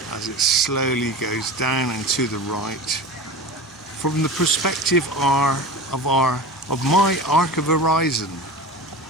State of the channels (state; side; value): normal; both; correlation 0.31